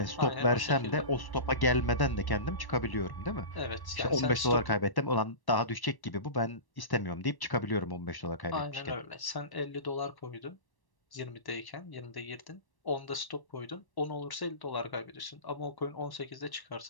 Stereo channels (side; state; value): right; late; 1.1 ms